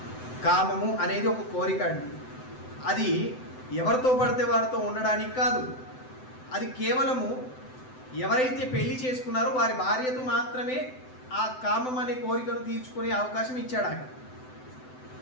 కామము అనేది ఒక కోరిక అండి. అది ఎవరితో పడితే వారితో ఉండడానికి కాదు. అది కేవలము ఎవరైతే పెళ్లి చేసుకున్నారో వారి భార్యతో మాత్రమే ఆ కామం అనే కోరికను తీర్చుకునే అవకాశం ఇచ్చాడు ఆయన.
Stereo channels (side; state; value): right; late; 7.8 ms